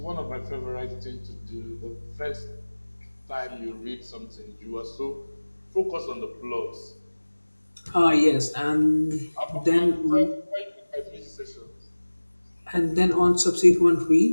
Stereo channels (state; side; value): inverted; both; correlation -1.00